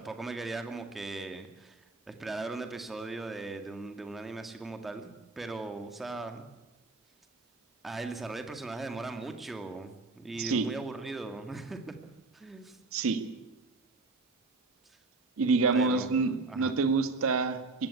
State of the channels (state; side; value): quieter; left; 3.6 dB